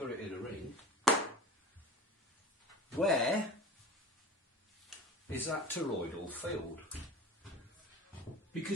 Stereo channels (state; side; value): normal; both; correlation 0.37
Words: it in a ring, where is that toroidal field?